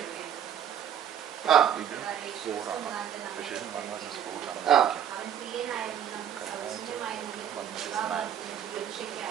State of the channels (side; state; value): left; quieter; 9.3 dB